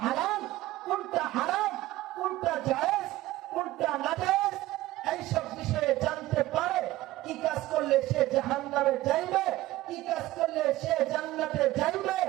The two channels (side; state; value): left; quieter; 16.6 dB